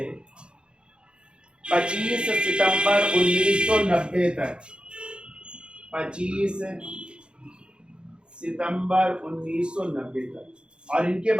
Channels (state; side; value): late; left; 0.054 ms